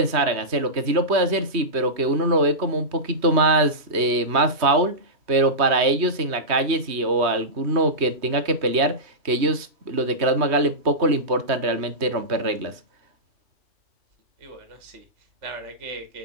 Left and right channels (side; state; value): left; late; 3.1 ms